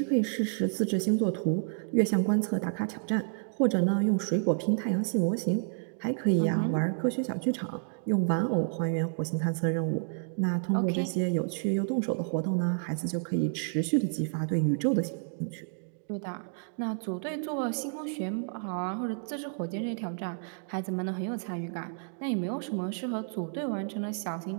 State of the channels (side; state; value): left; silent; digital silence